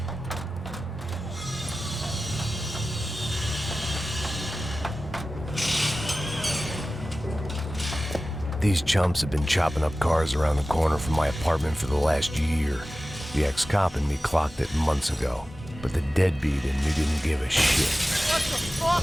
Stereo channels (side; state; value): both; normal; correlation 0.95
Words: These chumps have been chopping up cars around the corner from my apartment for the last year. The ex-cop in me clocked it months ago, but the deadbeat in me didn't give a shit. What the fuck?